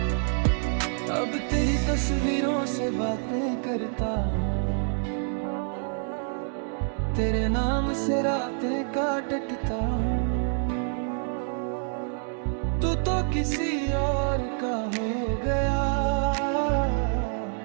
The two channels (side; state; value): left; silent; 60 dB below the other